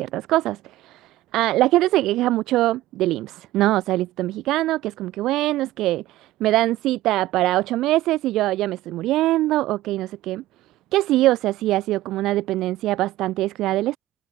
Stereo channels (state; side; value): quieter; left; 16.0 dB